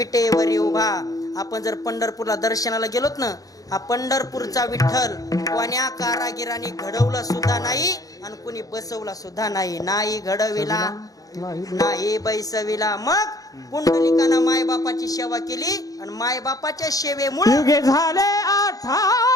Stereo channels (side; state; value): right; late; 0.17 ms